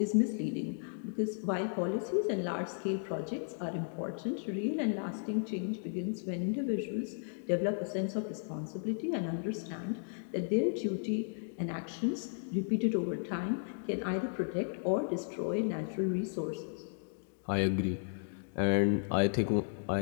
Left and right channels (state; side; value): silent; right; digital silence